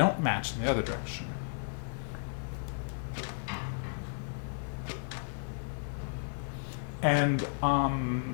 match in the other direction. And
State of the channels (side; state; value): right; silent; digital silence